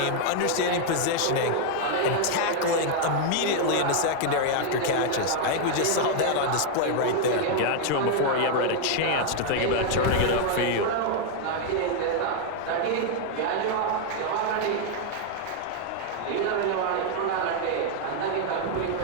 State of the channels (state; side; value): different; both; correlation 0.00